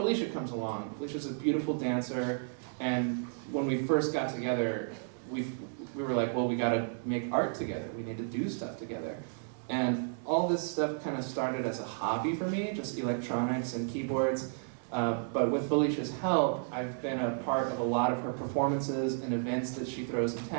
comes along. Felicia's a beautiful dancer, and when we first got together, we were like, well, we gotta make art together. We need to do stuff together. And all this stuff kind of started as a hobby for me, just electronics and keyboards. But with Felicia's help, I've been a part of a lot of her performances and events that she throws in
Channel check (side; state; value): left; silent; digital silence